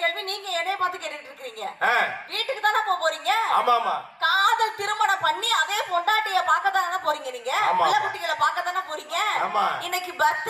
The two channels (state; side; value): identical; both; correlation 1.00